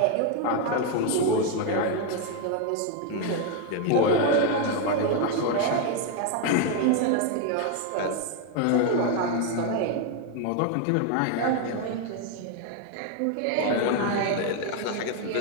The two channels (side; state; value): both; different; correlation 0.01